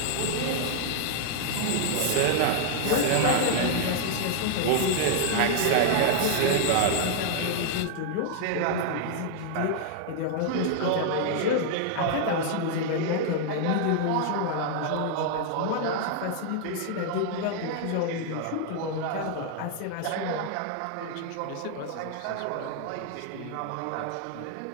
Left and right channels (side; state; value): both; different; correlation 0.00